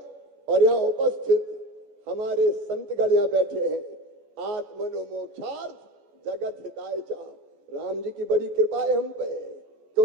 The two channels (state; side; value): late; left; 14 ms